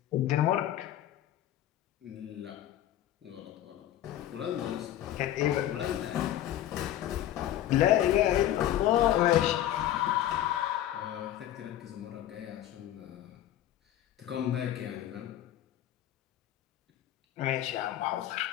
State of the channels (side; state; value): right; quieter; 12.4 dB